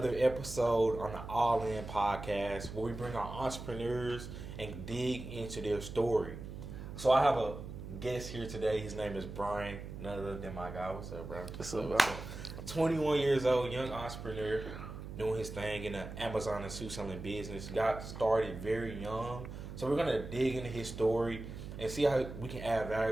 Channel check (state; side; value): noise; right; hum, 10 dB below the sound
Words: episode on the All In podcast where we bring our entrepreneurs and dig into their story. So I have a guest here today. His name is Brian, none other than my guy. What's up, bro? What's up? 21 years old, young entrepreneur, doing his thing in the Amazon and shoe selling business. Got started very young. So we're gonna dig into his story and see how we can add